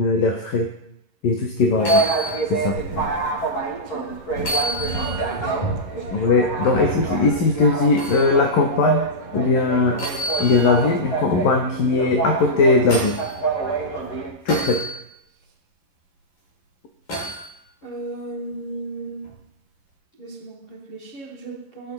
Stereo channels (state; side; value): late; right; 11 ms